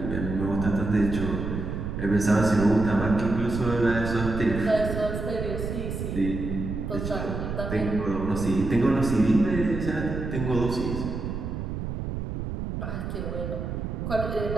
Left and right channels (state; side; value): noise; right; rumble, 4 dB below the sound